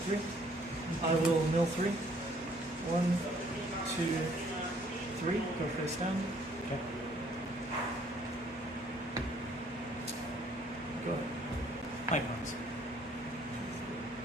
3. I will mill 3. 1, 2, 3. Go face down. Okay. Go ahead. My bones.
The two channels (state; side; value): normal; both; correlation 0.62